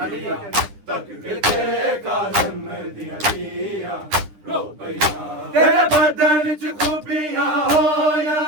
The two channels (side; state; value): left; late; 9.9 ms